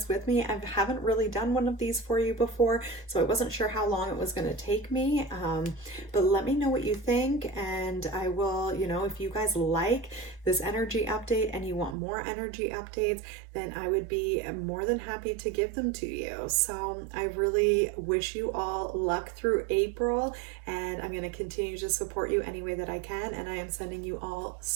with me. I haven't really done one of these for you before, so I wasn't sure how long it was going to take me. But let me know what you think, and I will, if you guys like this energy update and you want more energy updates, then I would be more than happy to give them to you. So I really wish you all luck through April, and I'm going to continue to support you any way that I can. And I am sending you all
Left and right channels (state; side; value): drops out; left; at 12.0 s